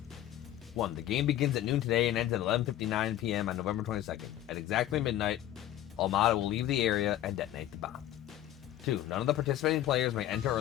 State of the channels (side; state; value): right; quieter; 12.8 dB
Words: 1. The game begins at noon today and ends at 11:59 p.m. on November 22nd. At exactly midnight, Almada will leave the area and detonate the bomb. 2. None of the participating players may enter or